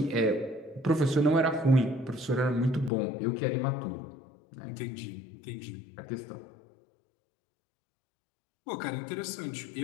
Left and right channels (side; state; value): right; drops out; at 2.9 s